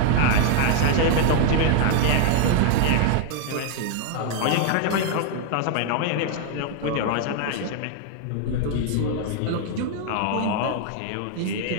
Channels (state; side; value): different; both; correlation 0.00